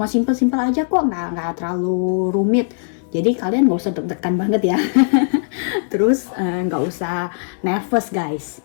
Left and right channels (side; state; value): right; silent; digital silence